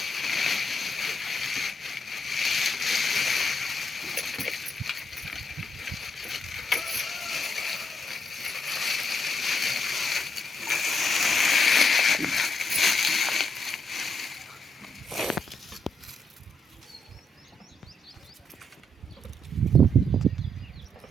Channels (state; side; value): normal; both; correlation 0.78